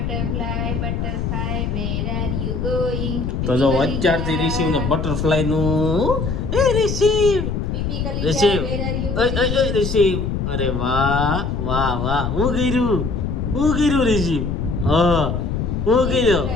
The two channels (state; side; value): noise; left; rumble, 2 dB below the sound